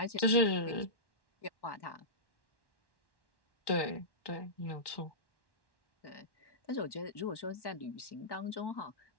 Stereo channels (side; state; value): right; late; 1.1 ms